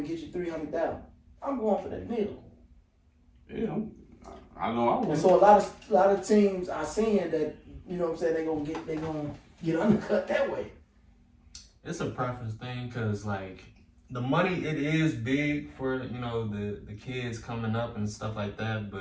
get you $300,000. I'm going for that deal. Yeah, I know I would. And so a lot of teams are seeing that, they gonna get undercut that way. It's a preference thing because the money, it is big for the kids coming up and stuff like that,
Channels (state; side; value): identical; both; correlation 1.00